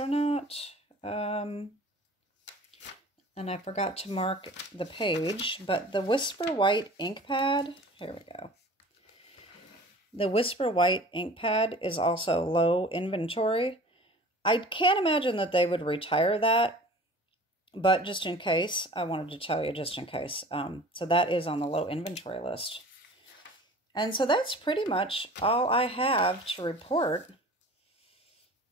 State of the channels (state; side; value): normal; both; correlation 0.43